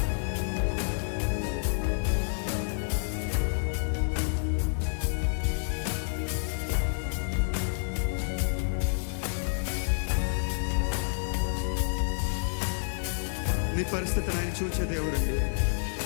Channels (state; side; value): silent; right; digital silence